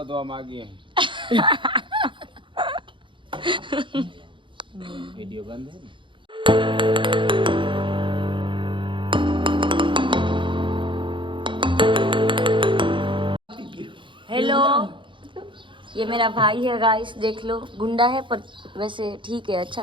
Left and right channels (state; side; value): late; left; 0.24 ms